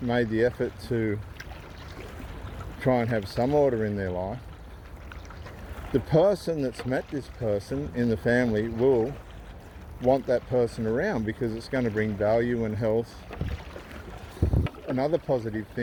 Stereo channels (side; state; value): both; identical; correlation 1.00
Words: the effort to try and have some order in their life, the person that's met this person in the family will want that person around because it's going to bring value and health and other positive